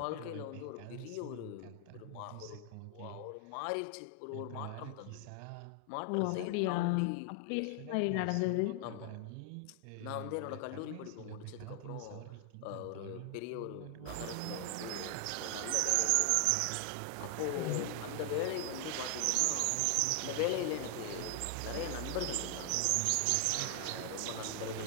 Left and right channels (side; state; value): both; different; correlation 0.00